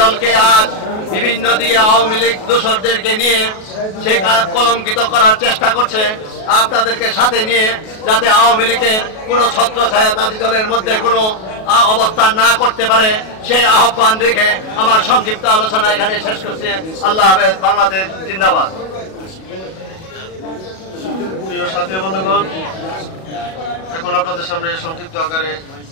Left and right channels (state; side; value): late; right; 37 ms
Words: দলকে আজ বিভিন্ন দিকে আওয়ামী লীগ দোসরদেরকে নিয়ে সে কলঙ্কিত করার চেষ্টা করছে, আপনাদেরকে সাথে নিয়ে, যাতে আওয়ামী লীগের কোনো ছত্রছায়া তাঁতি দলের মধ্যে কোনো অবস্থান না করতে পারে, সেই আহ্বান রেখে আমার সংক্ষিপ্ত আলোচনা এখানে শেষ করছি। আল্লাহ হাফেজ। বাংলাদেশ জিন্দাবাদ। প্রিয় সাথী বন্ধুগণ, এখন আপনাদের সামনে সংক্ষিপ্ত আকারে